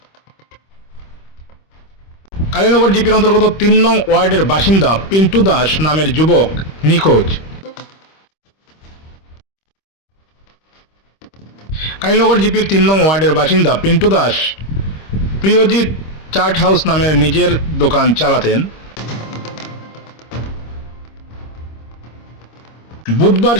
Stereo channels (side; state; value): right; late; 26 ms